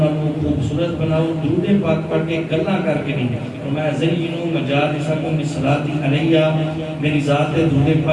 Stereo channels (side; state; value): both; identical; correlation 1.00